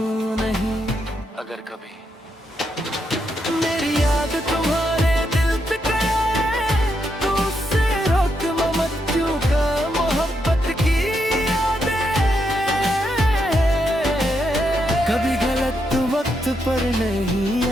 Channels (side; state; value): both; normal; correlation 0.80